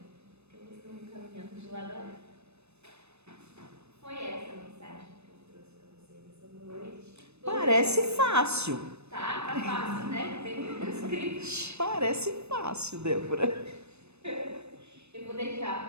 Que eu costumo caminhando de lado a lado. Foi essa a mensagem que eu trouxe para vocês essa noite. Parece fácil. Tá fácil, né? Tem um script. Parece fácil, Débora. Eu vou deixar a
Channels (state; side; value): late; left; 0.81 ms